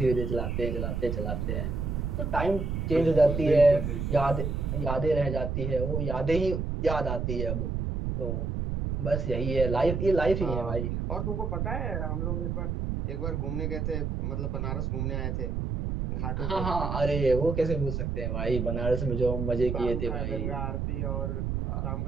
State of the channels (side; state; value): right; noise; rumble, 1 dB below the sound